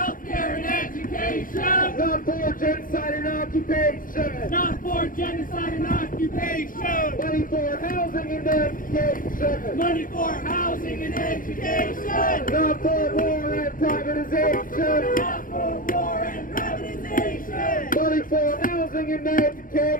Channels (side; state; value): right; late; 0.40 ms